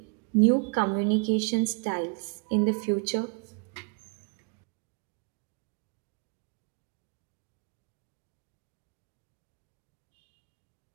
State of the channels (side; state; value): left; quieter; 35.5 dB